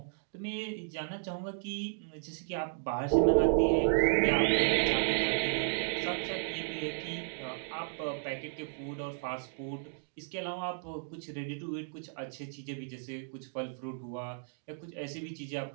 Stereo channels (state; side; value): silent; left; digital silence